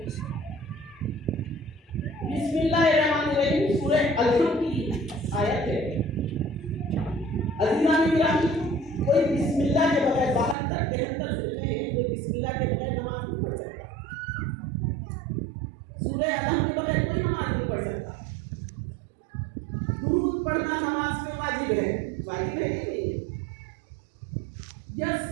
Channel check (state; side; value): drops out; left; at 10.6 s